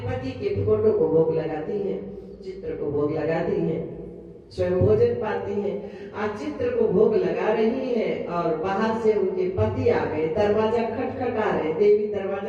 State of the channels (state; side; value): identical; both; correlation 1.00